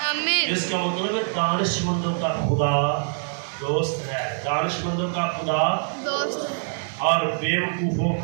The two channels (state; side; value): silent; left; 62 dB below the other